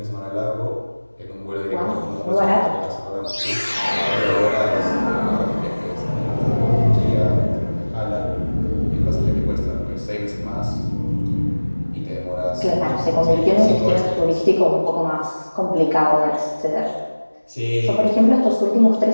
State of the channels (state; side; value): inverted; both; correlation -1.00